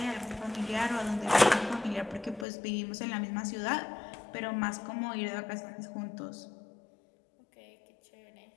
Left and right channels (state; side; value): drops out; right; at 2.5 s